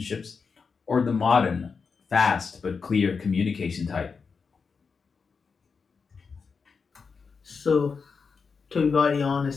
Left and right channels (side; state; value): right; quieter; 5.3 dB